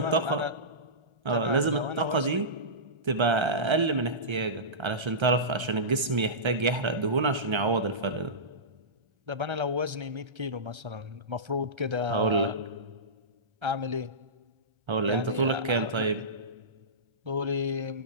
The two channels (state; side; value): late; left; 1.3 ms